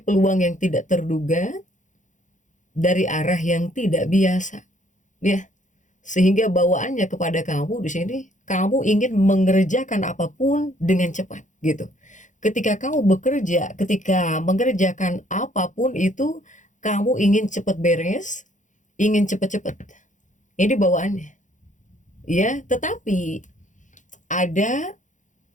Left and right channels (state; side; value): late; right; 0.36 ms